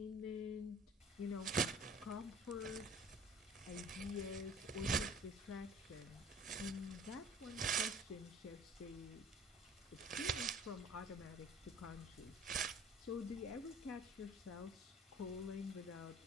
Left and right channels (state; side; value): normal; both; correlation 0.49